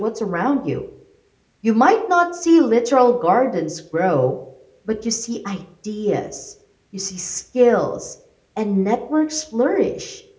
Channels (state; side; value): identical; both; correlation 1.00